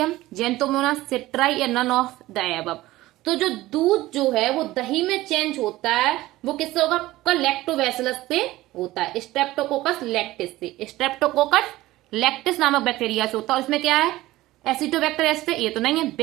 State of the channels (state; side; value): quieter; left; 17.2 dB